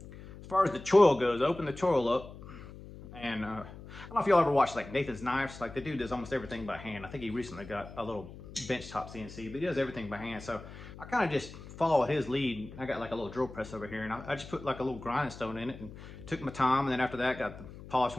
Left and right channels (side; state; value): left; noise; hum, 15 dB below the sound